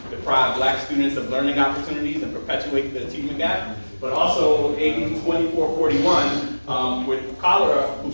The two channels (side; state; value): both; inverted; correlation -1.00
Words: deprive black students of learning opportunities and perpetuate the achievement gap. But also AB 2441 with Cholera, who